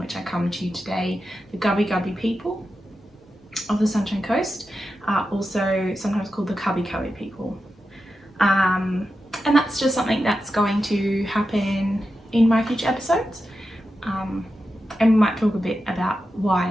I come to today, the Gubbi Gubbi people of the Sunshine Coast, also sometimes called the Cubbi Cubbi people. And that's just something that's going to happen in my future episodes. And we might talk a bit about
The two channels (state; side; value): normal; both; correlation 0.90